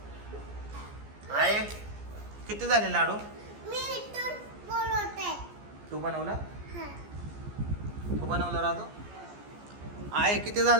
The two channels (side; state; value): left; late; 14 ms